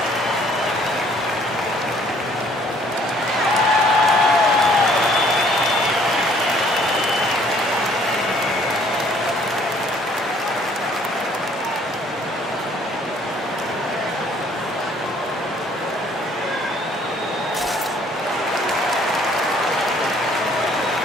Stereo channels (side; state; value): both; normal; correlation 0.60